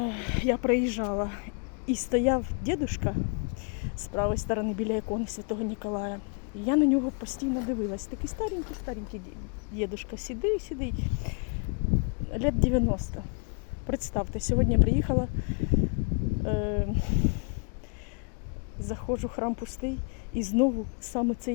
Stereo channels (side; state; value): right; quieter; 39.7 dB